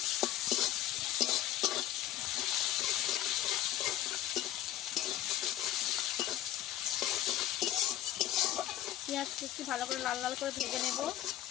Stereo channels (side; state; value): right; quieter; 13.0 dB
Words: পেঁয়াজ একটু ভালো করে লাল লাল করে ভেজে নেব।